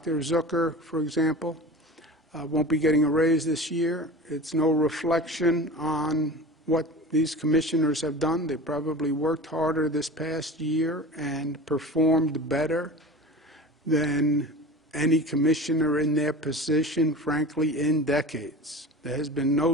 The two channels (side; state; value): both; normal; correlation 0.35